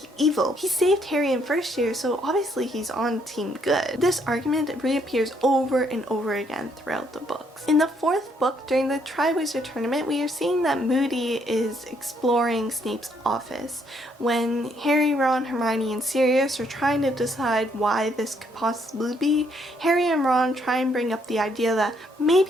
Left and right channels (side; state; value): both; normal; correlation 0.70